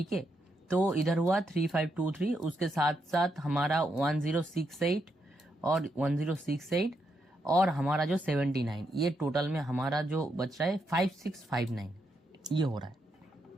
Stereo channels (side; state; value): both; normal; correlation 0.80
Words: है। तो इधर हुआ 3523, उसके साथ साथ हमारा 1068 और 1068 और हमारा जो 79, ये टोटल में हमारा जो बच रहा है 5659, ये हो रहा है